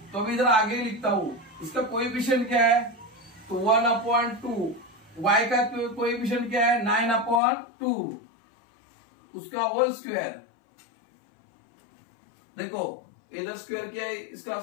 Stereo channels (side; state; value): right; drops out; at 7.4 s